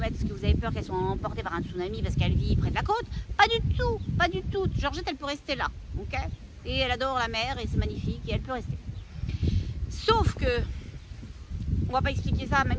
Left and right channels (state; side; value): identical; both; correlation 1.00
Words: parce que vous avez peur qu'elle soit emportée par un tsunami parce qu'elle vit près de la côte. Pas du tout, pas du tout. Georgette, elle peut rester là, ok? Et elle adore la mer et c'est magnifique et elle peut rester. Sauf que, on va pas expliquer ça à